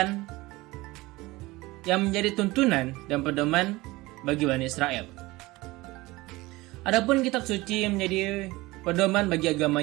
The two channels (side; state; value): left; quieter; 20.7 dB